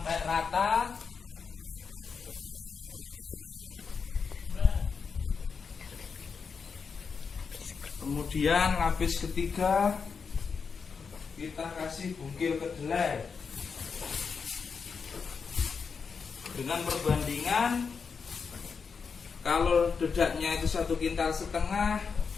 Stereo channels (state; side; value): quieter; right; 5.6 dB